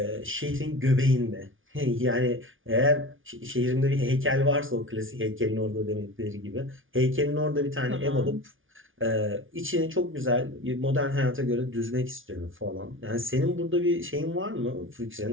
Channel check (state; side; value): late; left; 0.57 ms